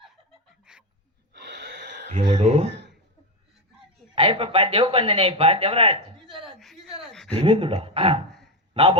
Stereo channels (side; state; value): both; normal; correlation 0.11